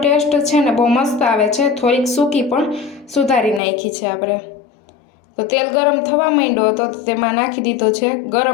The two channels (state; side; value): drops out; right; at 3.6 s